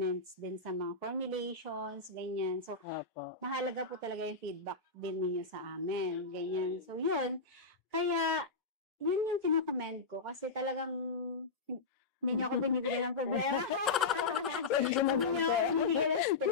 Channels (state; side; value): quieter; right; 4.0 dB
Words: din sa mga formulations, ganyan. So, mahalaga po talaga yung feedback din ninyo sa amin, ganyan. So, yun. Kaya, yun yung kinakomment ko kasi talagang hindi niyo ako binibigyan ng problema. Hindi niyo ako binibigyan ng